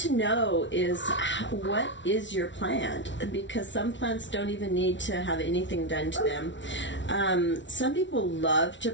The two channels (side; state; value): right; late; 0.54 ms